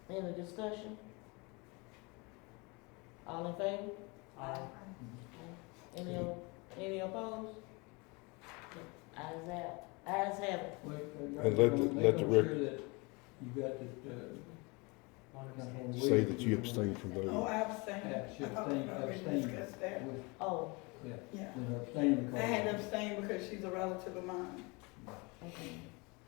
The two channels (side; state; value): right; quieter; 27.9 dB